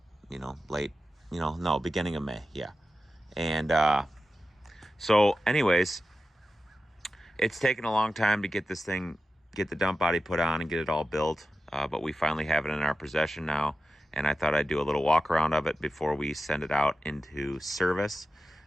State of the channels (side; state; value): both; normal; correlation 0.92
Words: beginning of May, yeah. And so anyways, it's taken a long time to get this thing, get the dump body put on and get it all built, but we finally have it in our possession now, and I thought I'd do a little walk around of it before we send it out into service.